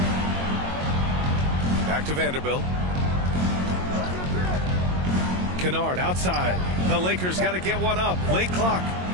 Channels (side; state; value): left; late; 22 ms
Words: Back to Vanderbilt. Kennard outside. The Lakers got to get one up. Late clock.